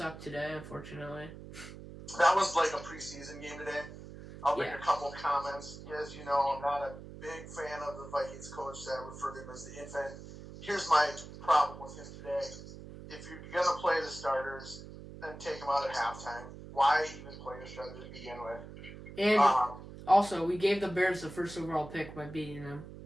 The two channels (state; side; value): noise; right; hum, 14 dB below the sound